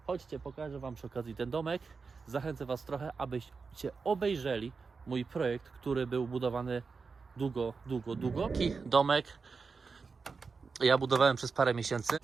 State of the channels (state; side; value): quieter; left; 4.8 dB